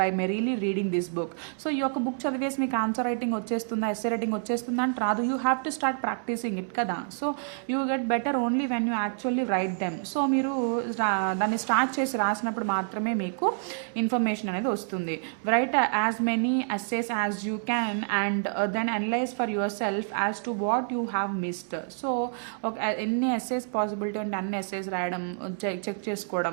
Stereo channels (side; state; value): left; silent; 59 dB below the other